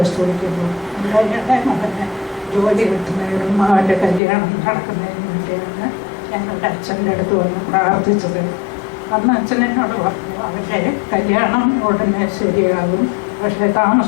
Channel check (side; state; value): right; drops out; at 4.2 s